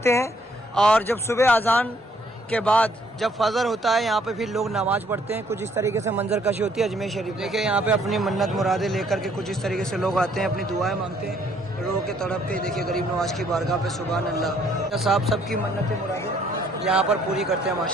हैं। और जब सुबह अजान उसके बाद जब फजर होता है यहाँ पे फिर लोग नमाज पढ़ते हैं। कुछ इस तरीके से मंजर कशी होती है अजमेर शरीफ। देखिए यहाँ पे अपनी मन्नत मुरादें लेकर के कुछ इस तरीके से लोग आते हैं, अपनी दुआएं मांगते हैं, रो के तड़प के। देखिए गरीब नवाज की बारगाह पे सुभान अल्लाह साहब सबकी मन्नतें मुरादें यहाँ पर पूरी करते हैं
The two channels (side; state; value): both; normal; correlation 0.65